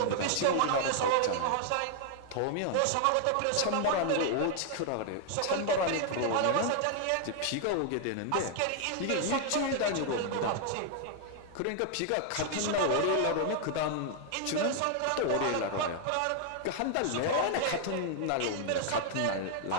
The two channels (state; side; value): different; both; correlation 0.00